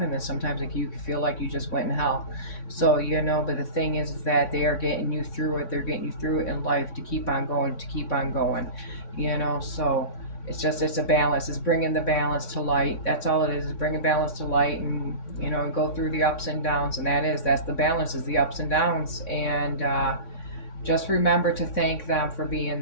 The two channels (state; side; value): late; right; 3.6 ms